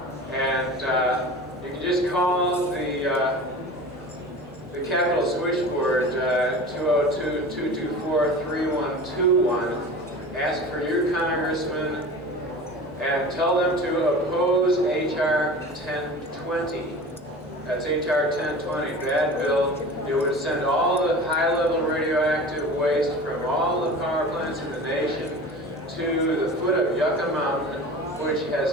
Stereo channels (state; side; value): normal; both; correlation 0.36